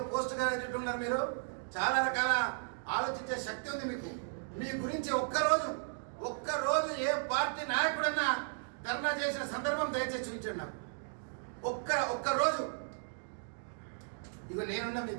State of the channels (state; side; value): silent; left; digital silence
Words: పోస్ట్ గ్రాడ్యుయేట్ ఉన్నారు. మీరు చాలా రకాల ఆలోచించే శక్తి ఉంది మీకు. మీ గురించి ఒక్కరోజు ఏ పార్టీ నాయకుడన్నా ధర్నా చేసిన సందర్భం దయచేసి చూపించండి నాకు. ఒక్కరోజు. ఇక నేనున్నా